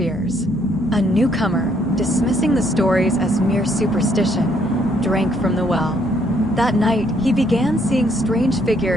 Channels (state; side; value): normal; both; correlation 0.69